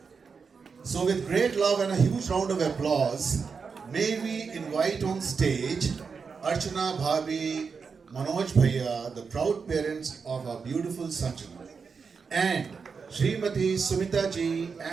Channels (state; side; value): quieter; left; 5.5 dB